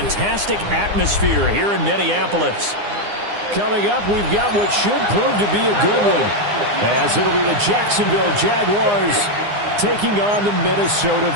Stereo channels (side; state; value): left; late; 9.8 ms